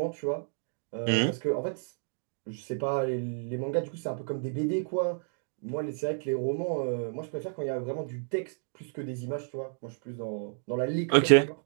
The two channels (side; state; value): left; silent; digital silence